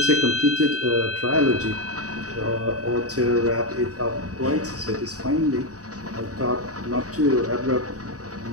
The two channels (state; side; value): late; left; 0.66 ms